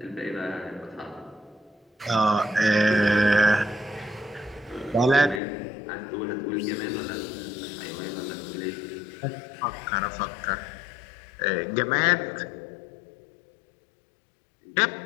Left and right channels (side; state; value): right; drops out; at 5.4 s